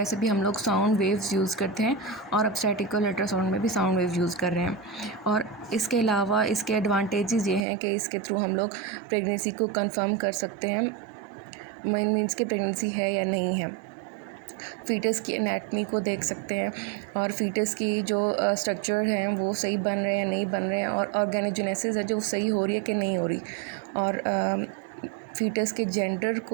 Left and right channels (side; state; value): left; drops out; at 7.6 s